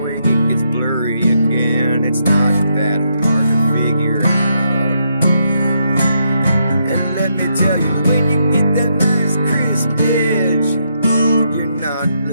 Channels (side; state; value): both; inverted; correlation -0.78